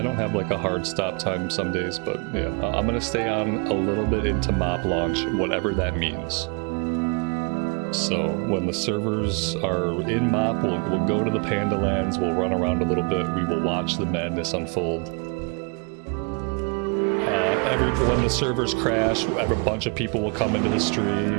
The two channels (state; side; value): quieter; left; 34.5 dB